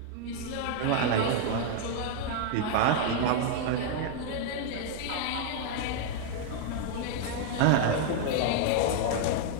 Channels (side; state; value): both; different; correlation 0.00